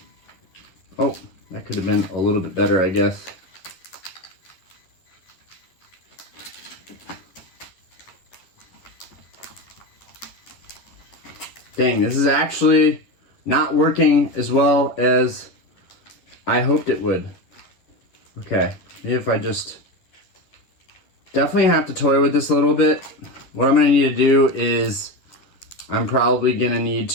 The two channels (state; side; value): late; right; 11 ms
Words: Oh, that could have been a little bit better, I guess. Dang, this is actually not working as well as I hoped it would. Okay, maybe if I just definitely have to toy with this a little bit. What I'm gonna need to do is I'm probably gonna need